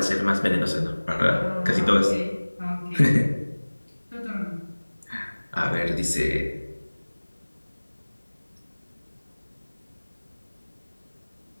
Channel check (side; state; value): both; inverted; correlation -1.00